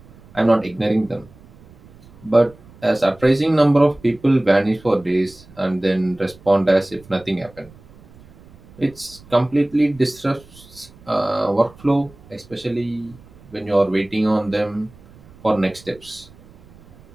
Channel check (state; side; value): noise; right; rumble, 24 dB below the sound